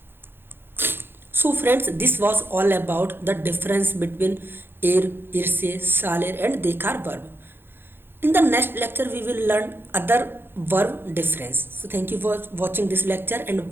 So friends, this was all about the difference between ir, irse, salir and dekar verb. In the next lecture, we will learn other verb difference. So thank you for watching this lecture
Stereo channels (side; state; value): left; late; 0.10 ms